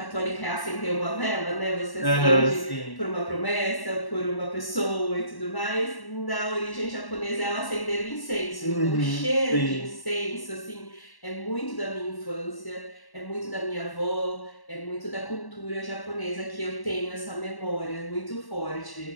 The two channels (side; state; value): right; late; 1.1 ms